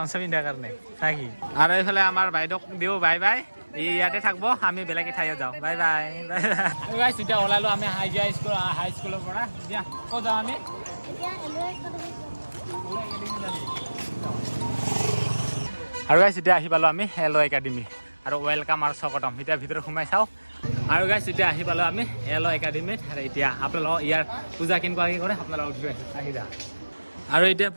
পিন্ধাৰ কাৰণে নাকি আৰু এইফালে আমাৰ বাইদেউক দিওঁ বাই ইয়াতে থাকিব আমি বেলেগ ঠাইত যাওঁ বাই গাইছ এতিয়া ওলালোঁ আমি হাই স্কুলৰ পৰা এতিয়া ক'ত যাওঁ আমি আৰু গাইছ এতিয়া আহি পালোঁ আমি এল একাডেমি আৰু ৱেলকাম আৰু স্বাগতম এতিয়া ভিতৰত সোমাই চাওঁ আৰু গাইছ এতিয়া আহি পালোঁ আমি এল একাডেমিত আৰু এতিয়া আপোনালোকক ইয়াৰ পূজা কেনেকুৱাকৈ কৰে আপোনালোকক আহি যা আৰু এতিয়া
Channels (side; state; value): both; inverted; correlation -1.00